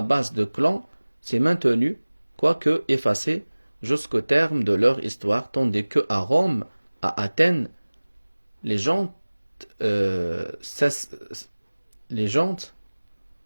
de clans s'est maintenue, quoique effacée, jusqu'au terme de leur histoire, tandis que à Rome, à Athènes, les gens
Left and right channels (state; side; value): inverted; both; correlation -1.00